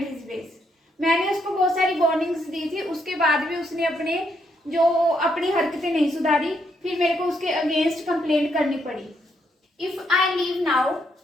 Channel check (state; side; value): normal; both; correlation 0.76